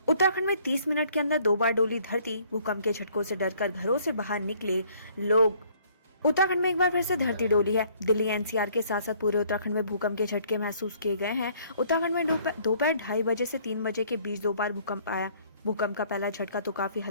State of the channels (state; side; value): inverted; both; correlation -0.61